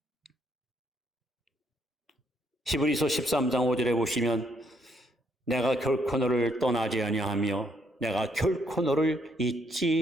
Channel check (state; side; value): normal; both; correlation 0.72